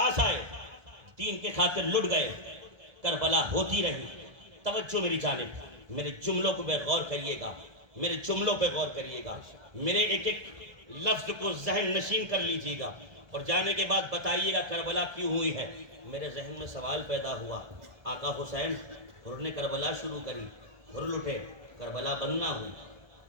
آئے دین کے خاطر لٹ گئے، کربلا ہوتی رہی۔ توجہ میری جانب، میرے جملوں کو غور کریے گا، میرے جملوں پہ غور کریے گا، میرے ایک ایک لفظ کو ذہن نشین کر لیجیے گا اور جانے کے بعد بتائیے گا کربلا کیوں ہوئی ہے۔ میرے ذہن میں سوال پیدا ہوا، آقا حسین ہر نے کربلا شروع کری، ہر لٹے کربلا بند نہ ہوئی،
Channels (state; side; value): late; left; 1.7 ms